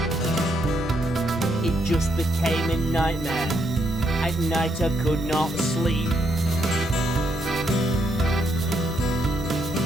It just became a nightmare. At night I could not sleep.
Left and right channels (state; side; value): normal; both; correlation 0.76